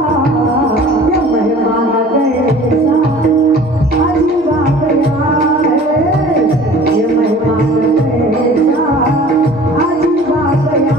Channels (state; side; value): normal; both; correlation 0.46